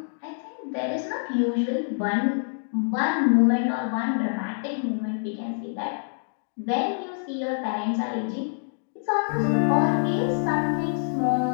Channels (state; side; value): silent; right; digital silence